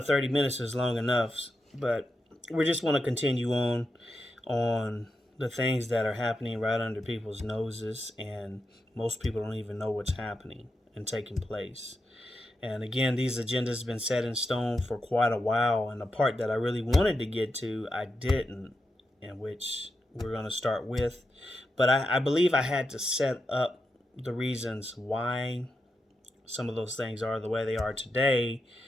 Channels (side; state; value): both; normal; correlation 0.87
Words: 30 minutes is long enough, but we just want to continue on the things that are happening right under people's noses, and most people don't even know what's happening and taking place. And again, these agendas have been set in stone for quite a while, and the part that I really wanted to get to, I didn't, and which we're going to start with. But I believe I had to set up the reasons why some of those things are the way they are today.